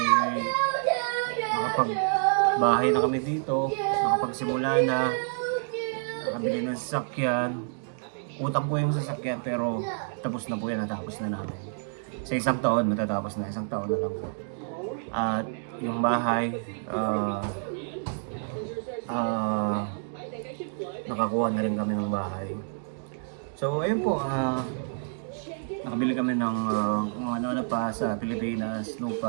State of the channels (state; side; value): silent; left; digital silence